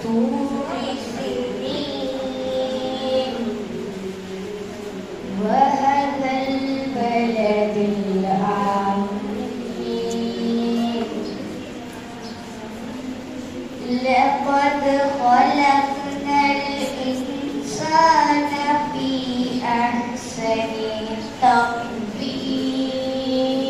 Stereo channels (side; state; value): both; identical; correlation 1.00